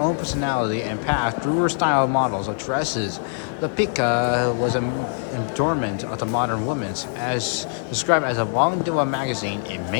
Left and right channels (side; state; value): right; silent; digital silence